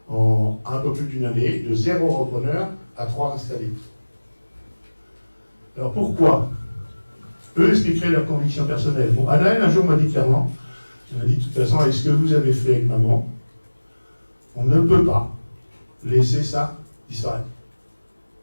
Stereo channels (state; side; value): inverted; both; correlation -1.00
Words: en un peu plus d'une année, de 0 repreneur à 3 installés. Alors pourquoi? Eux expliqueraient leurs convictions personnelles. Bon, Anaël, un jour, m'a dit clairement, elle m'a dit, de toute façon, avec ce que vous avez fait avec maman, on ne peut pas laisser ça disparaître.